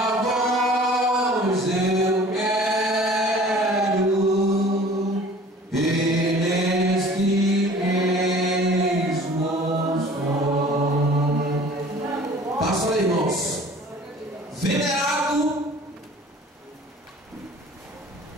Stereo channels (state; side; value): normal; both; correlation 0.47